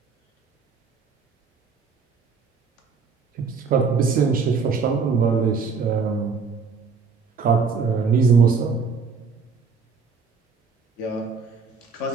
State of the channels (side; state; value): left; quieter; 5.2 dB